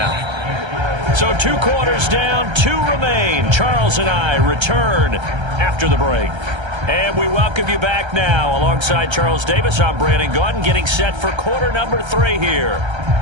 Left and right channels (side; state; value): left; late; 1.3 ms